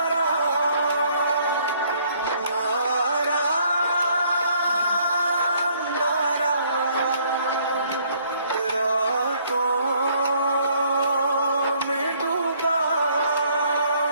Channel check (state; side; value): inverted; both; correlation -0.63